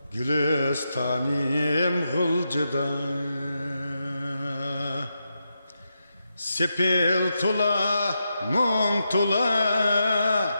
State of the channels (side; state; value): both; inverted; correlation -0.86